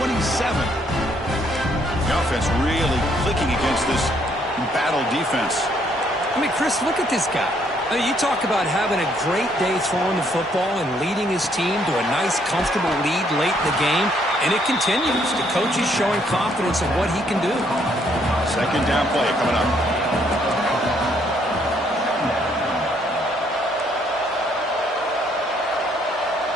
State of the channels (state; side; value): normal; both; correlation 0.69